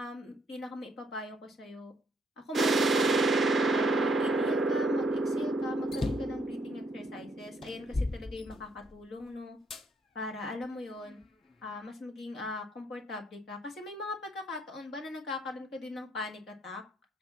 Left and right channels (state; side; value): normal; both; correlation 0.72